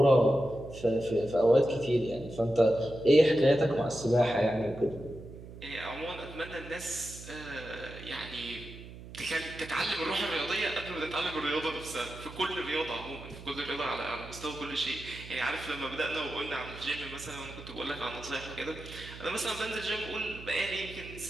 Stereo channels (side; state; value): right; noise; hum, 15 dB below the sound